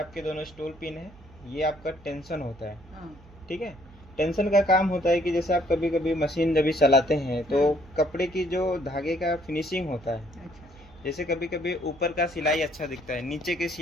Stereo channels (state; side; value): noise; right; hum, 23 dB below the sound